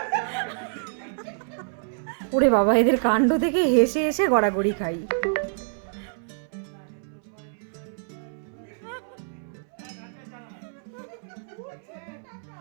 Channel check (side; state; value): left; silent; 60 dB below the other